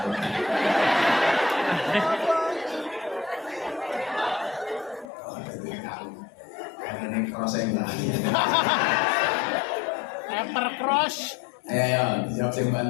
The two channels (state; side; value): drops out; right; at 5.1 s